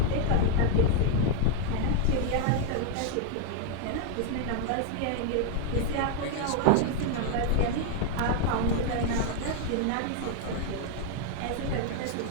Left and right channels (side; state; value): both; different; correlation 0.00